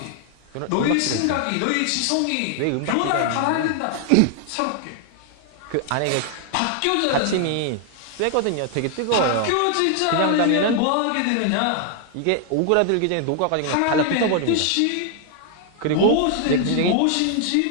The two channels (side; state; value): both; different; correlation 0.00